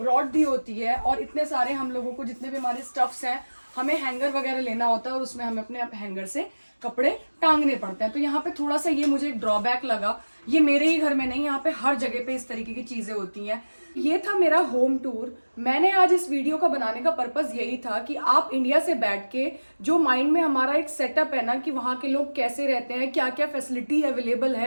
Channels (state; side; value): inverted; both; correlation -1.00